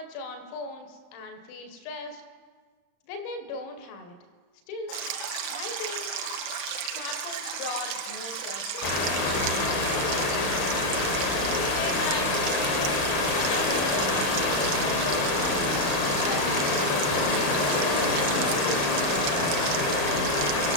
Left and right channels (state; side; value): late; right; 35 ms